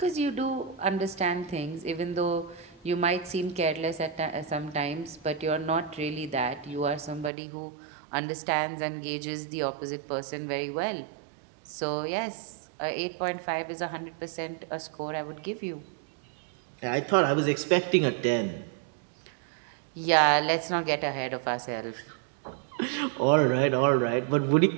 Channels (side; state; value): left; drops out; at 7.3 s